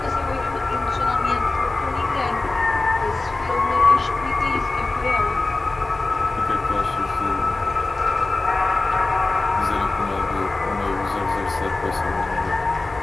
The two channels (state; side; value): quieter; right; 3.3 dB